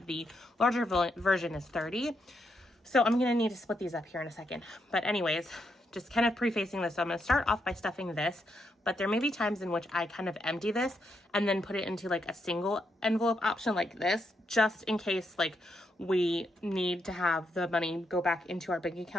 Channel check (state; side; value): normal; both; correlation 0.80